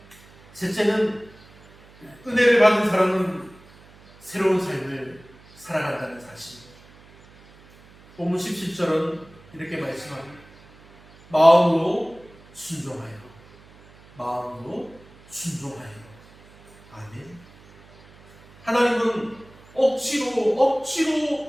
셋째는 은혜를 받은 사람은 새로운 삶을 살아간다는 사실입니다. 본문 17절은 이렇게 말씀합니다. 마음으로 순종하여, 마음으로 순종하여. 아멘. 하나님은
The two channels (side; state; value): right; noise; hum, 25 dB below the sound